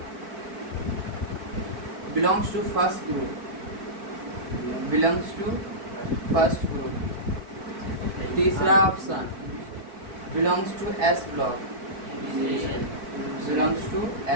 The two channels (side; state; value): left; late; 4.6 ms